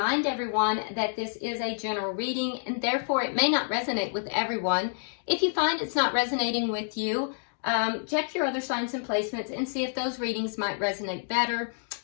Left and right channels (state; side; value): silent; right; digital silence